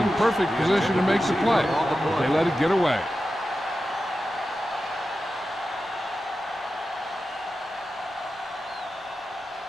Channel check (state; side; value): normal; both; correlation 0.92